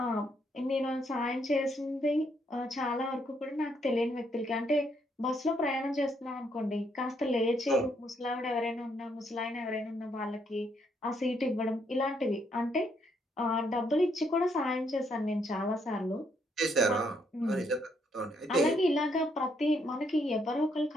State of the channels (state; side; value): normal; both; correlation 0.73